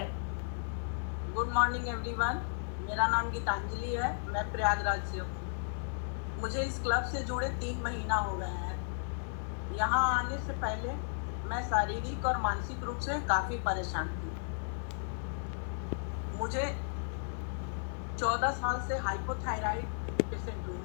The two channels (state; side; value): silent; right; 55 dB below the other